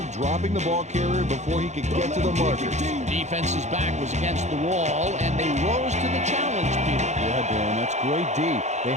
dropping the ball carrier before he could get to the markers. Defense's back was against the wall, and they rose to the challenge, Peter. Yeah, Dan, that's great D. They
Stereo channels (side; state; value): left; late; 0.33 ms